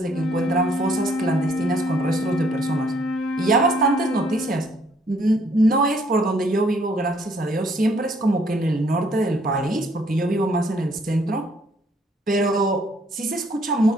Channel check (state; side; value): normal; both; correlation 0.65